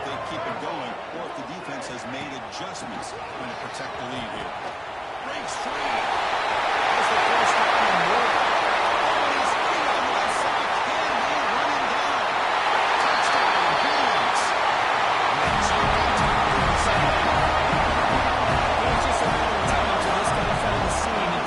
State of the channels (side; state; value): both; identical; correlation 1.00